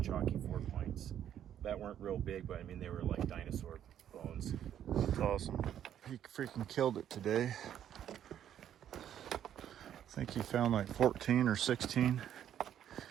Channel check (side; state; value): left; quieter; 10.2 dB